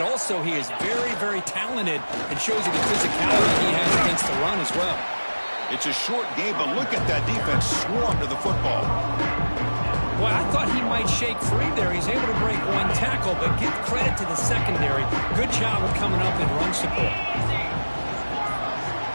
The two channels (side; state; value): both; inverted; correlation -1.00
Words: also he is very, very talented and shows you the physicality he has against the run as well. It's a short game, but look at that defense swarm to the football. Well, I thought he might shake free there. He's able to break one tackle, but give credit to the secondary. Good job of coming up in run support.